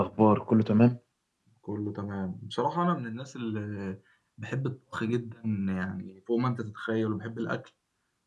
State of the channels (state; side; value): identical; both; correlation 1.00